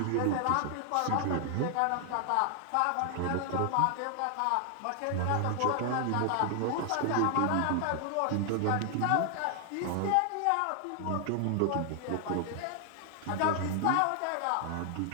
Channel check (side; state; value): both; different; correlation 0.00